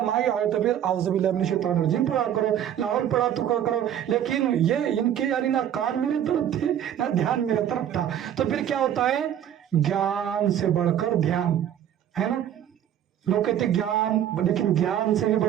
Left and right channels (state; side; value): quieter; left; 10.3 dB